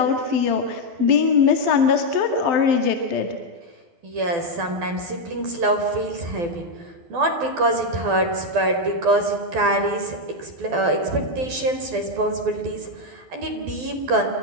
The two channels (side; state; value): left; late; 12 ms